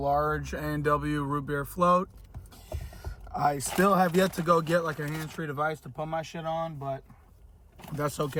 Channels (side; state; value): both; identical; correlation 1.00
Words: A&W root beer float. I still have yet to go get like a hands-free device to put my shit on, but that's